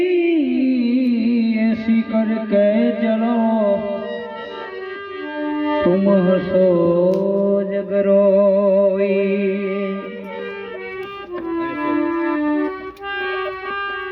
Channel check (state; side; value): identical; both; correlation 1.00